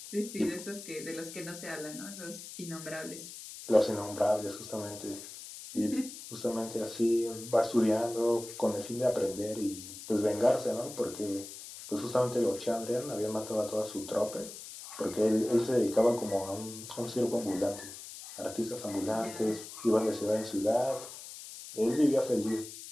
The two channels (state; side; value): noise; left; hiss, 12 dB below the sound